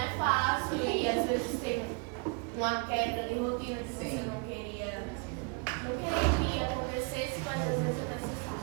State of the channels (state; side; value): quieter; left; 31.8 dB